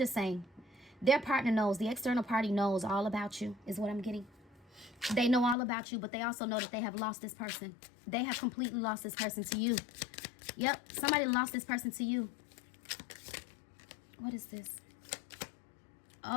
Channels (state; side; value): drops out; right; at 5.6 s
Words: saying. Their partner knows. The external party knows all about you, is what I'm getting. They know all about you, but they also know that they have lost this person. They have completely lost this person to you. Yep, somebody lost this person to you. What is this?